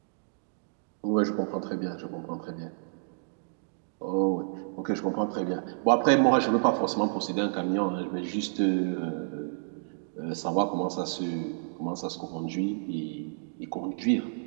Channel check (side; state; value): left; silent; digital silence